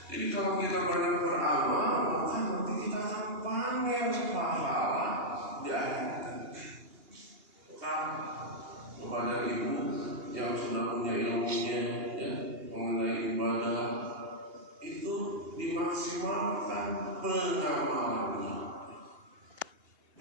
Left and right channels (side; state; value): left; late; 2.8 ms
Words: Jadi kalau kita banyak beramal, maka nanti kita akan panen pahala di akhirat. Maka kepada ibu yang sudah punya ilmunya ya, mengenai ibadah itu dimaksimalkan pengamalannya.